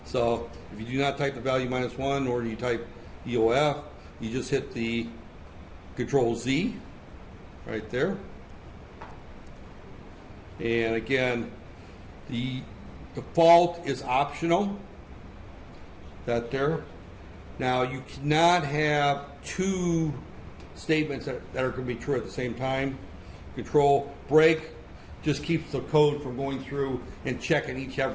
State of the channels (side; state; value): both; identical; correlation 1.00